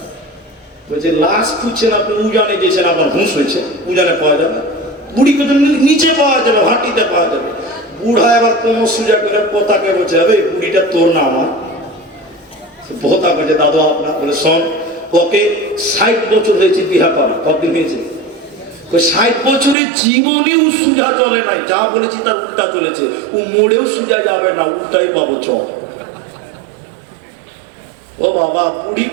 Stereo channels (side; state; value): left; drops out; at 19.8 s